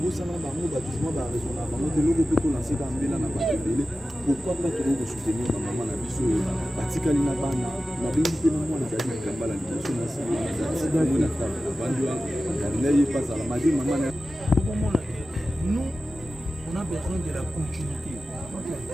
Pourquoi pas toujours soutenir ma maman la biso batikali na bana na bingi pe na mwana zali kambala liboso na si na bandwa na ye passe la madi maman nous on a besoin de la continuité.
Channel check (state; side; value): normal; both; correlation 0.94